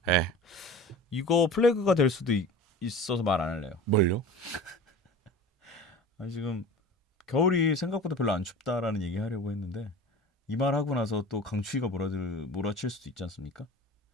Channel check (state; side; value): normal; both; correlation 0.37